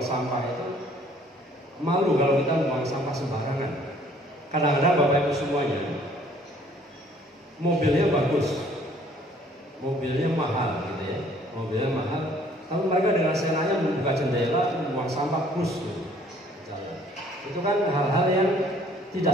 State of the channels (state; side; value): normal; both; correlation 0.58